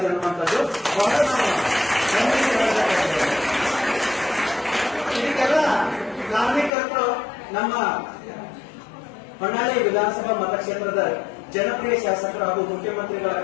ಅನ್ನುವಂಥದ್ದು. ಇದಕ್ಕೆಲ್ಲ ಕಾರಣಕರ್ತರು ನಮ್ಮ ಹೊನ್ನಾಳಿ ವಿಧಾನಸಭಾ ಮತಕ್ಷೇತ್ರದ ಜನಪ್ರಿಯ ಶಾಸಕರು ಹಾಗೂ ಮುಖ್ಯಮಂತ್ರಿಗಳ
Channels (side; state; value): right; drops out; at 6.7 s